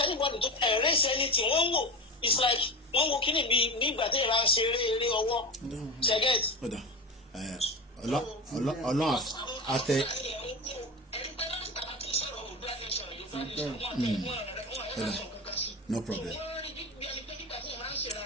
tó raise anything wọ́n wò it's like wọ́n wo kíni bí ìgbà tí ìlànà ṣe eré ọwọ́ ṣẹ́gẹ́t. Ọlọ́run àtẹ. No problem.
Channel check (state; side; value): normal; both; correlation 0.25